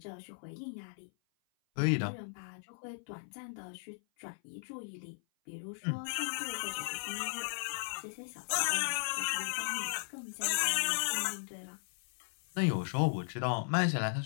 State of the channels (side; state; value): right; silent; 53 dB below the other